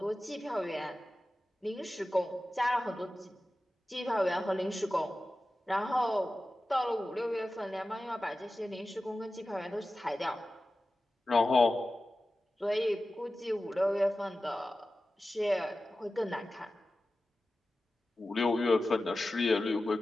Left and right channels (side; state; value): both; normal; correlation 0.95